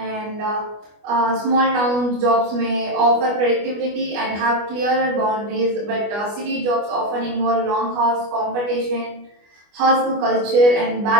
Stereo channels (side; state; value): left; late; 24 ms